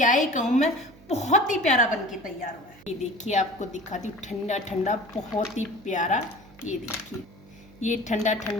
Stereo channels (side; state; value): right; noise; hum, 23 dB below the sound